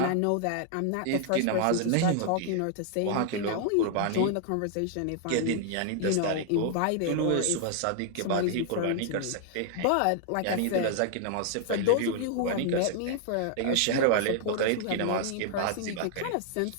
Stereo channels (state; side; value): different; both; correlation 0.00